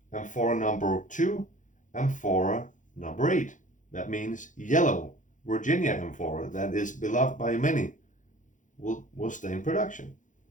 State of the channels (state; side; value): late; right; 0.37 ms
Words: Amphora number 2, Amphora number 8. That means yellow Virginia Amphora that is beloved by many will stay in production.